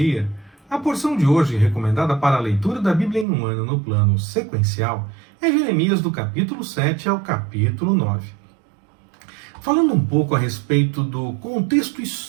A porção de hoje, recomendada para a leitura da Bíblia em um ano no plano sequencial, é Jeremias do capítulo 7 ao capítulo 9. Falando um pouco a respeito do contexto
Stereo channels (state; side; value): drops out; left; at 3.2 s